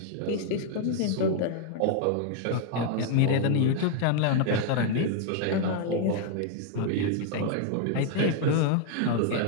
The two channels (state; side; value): different; both; correlation 0.00